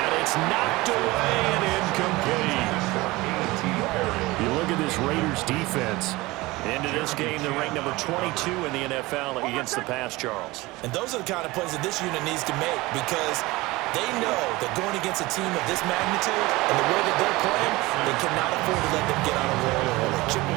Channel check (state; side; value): quieter; left; 20.9 dB